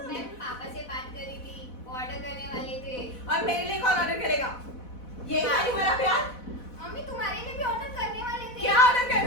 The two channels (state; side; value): late; right; 4.1 ms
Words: मैं पापा से बात करी थी, ऑर्डर करने वाले थे। और मेरे लिए कौन ऑर्डर करेगा? ये खाली मेरा प्यार। मम्मी तुम्हारे लिए भी ऑर्डर करने वाले थे। क्या ऑर्डर